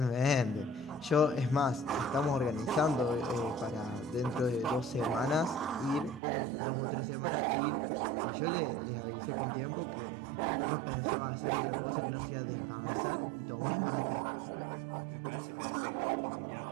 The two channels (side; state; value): left; drops out; at 6.2 s